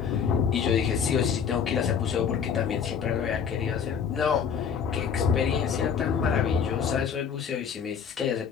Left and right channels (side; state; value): right; quieter; 7.1 dB